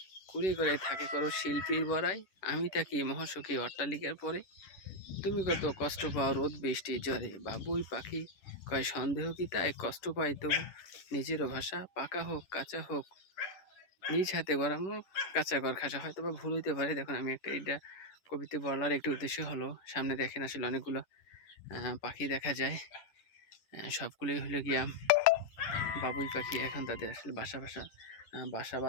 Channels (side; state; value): right; late; 10 ms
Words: কুড়িয়ে করে থাকে করো শিল্পীর বড়াই, আমি থাকি মহাসুখী অট্টালিকার পরে, তুমি কত কষ্ট পাও রোদ বৃষ্টি জ্বরে। বাবুই পাখি কয় সন্দেহ কি তাই, কষ্ট পাই তবু নিজেরও ভাষা, পাকা হোক কাঁচা হোক নিজ হাতে গড়ানো কাঁচা ঘর খাসা। হয়তো বা ভুল হইতে পারে। দেখুন, আমি এটা কবিতা বলার একটি উদ্দেশ্য হলো, সামনে দেখেন আসলে অনেকগুলো পাখি দেখা যায়, সবগুলোই হলো গিয়া বাবুই পাখি। এখন তাদের আসলে বাসা